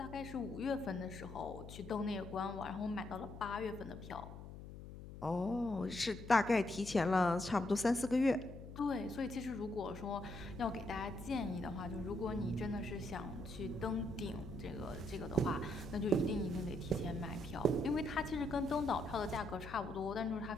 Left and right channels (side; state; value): left; noise; hum, 12 dB below the sound